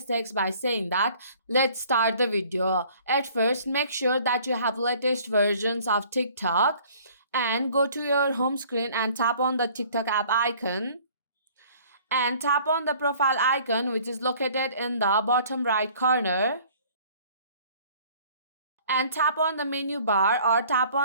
by saying that. Let's start the video. At first, make sure that you have latest versions of TikTok and go to your home screen and tap on the TikTok app icon and tap on the profile icon which is located in the bottom right corner and tap on the menu bar or tap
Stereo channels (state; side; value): inverted; both; correlation -0.53